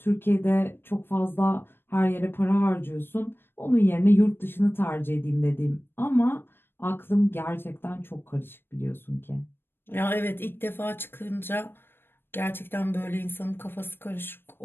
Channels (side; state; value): right; late; 0.10 ms